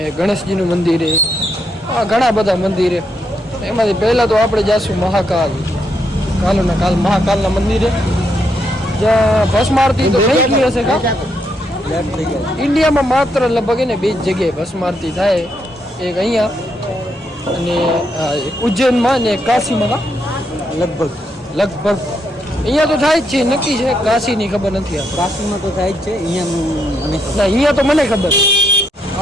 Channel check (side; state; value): both; normal; correlation 0.78